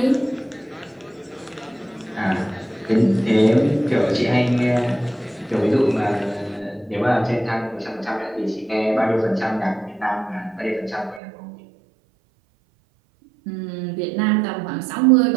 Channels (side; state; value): left; drops out; at 11.2 s